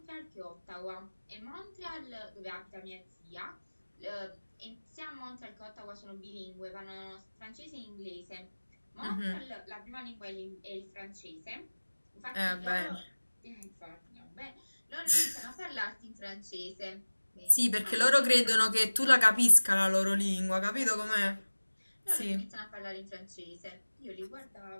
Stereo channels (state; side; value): inverted; both; correlation -1.00